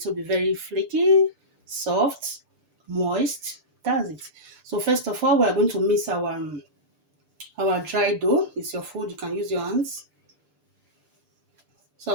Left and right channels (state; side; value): late; left; 6.7 ms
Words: to be very flaky, soft, moist. That's it. So first of all, we are going to mix our dry dough. It's your food. You can use your hands. So